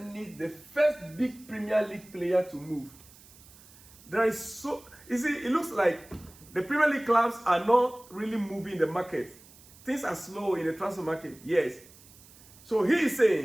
the first big Premier League player to move. There is so, you see, it looks like the Premier League clubs are not really moving the market. Things are slow in the transfer market, yes. So he is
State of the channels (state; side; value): noise; right; hiss, 23 dB below the sound